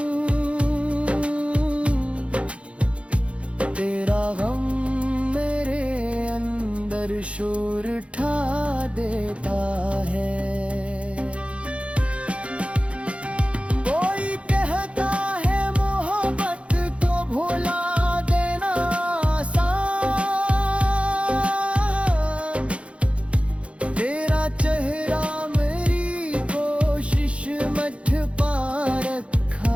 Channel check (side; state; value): left; late; 0.061 ms